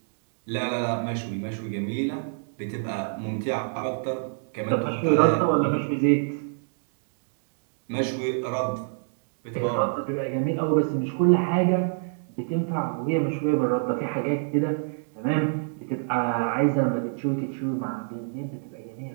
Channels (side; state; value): left; silent; digital silence